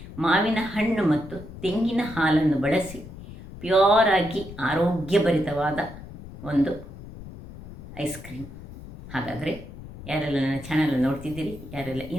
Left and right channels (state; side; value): noise; left; rumble, 15 dB below the sound